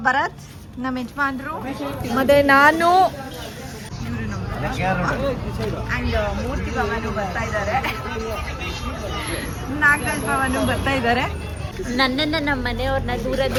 ಭರತ್ ನಮ್ಮ ಯಜಮಾನ್ರು, ಮತ್ತೆ ನಾನು ಅಂಡ್ ಮೂರ್ತಿ ಭವನು ಬರ್ತಾ ಇದ್ದಾರೆ, ನಾಗರಾಜ್ ಭವನು ಬರ್ತಾ ಇದ್ದಾರೆ. ನನ್ನನ್ನ ನಮ್ಮ ಮನೆಯವ್ರನ್ನ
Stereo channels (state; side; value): identical; both; correlation 1.00